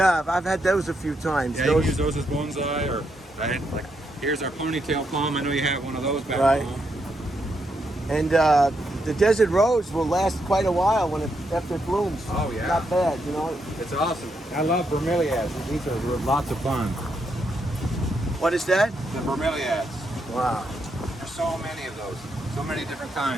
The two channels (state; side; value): normal; both; correlation 0.79